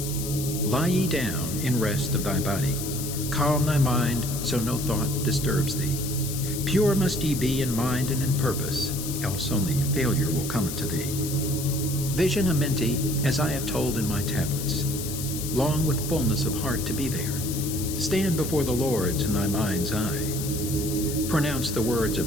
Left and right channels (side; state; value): left; noise; hiss, 7 dB below the sound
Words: Lie ye down in rest of thy body, calm thy mind so no thought disturbs thee. Pure must ye be in mind and in purpose, else only failure will come unto thee. Vision Amenti as I have told in my tablets. Long with fullness of heart to be there. Stand before the lords in thy mind's eye. Pronounce the words